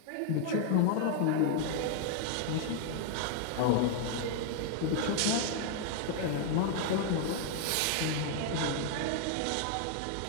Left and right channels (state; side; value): different; both; correlation 0.00